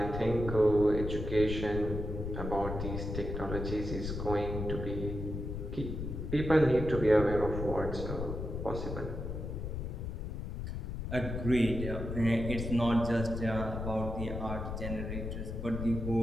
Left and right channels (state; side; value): noise; left; rumble, 5 dB below the sound